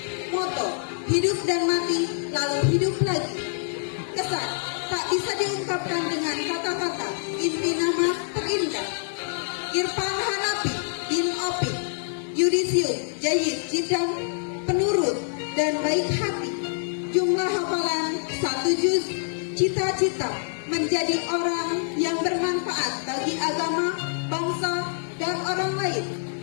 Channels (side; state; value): right; silent; 57 dB below the other